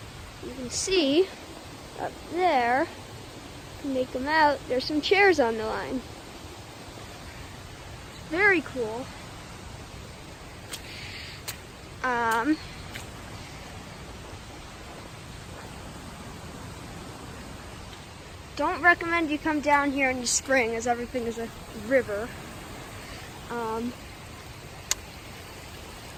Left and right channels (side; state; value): both; identical; correlation 1.00